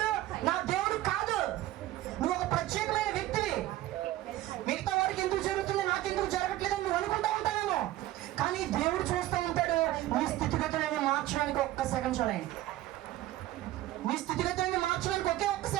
నా దేవుడు కాదు. నువ్వు ఒక ప్రత్యేకమైన వ్యక్తివి. మిగతా వారికి ఎందుకు జరుగుతుంది, నాకెందుకు జరగట్లేదని నువ్వు అనుకుంటా ఉంటావేమో. కానీ దేవుడు చూస్తూ ఉంటాడు నీ స్థితిగతులను మార్చడానికి ఒక్క సెకండ్ చాలండి. నీ స్థితిగతులను మార్చడానికి ఒకే ఒక్క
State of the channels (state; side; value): quieter; left; 15.2 dB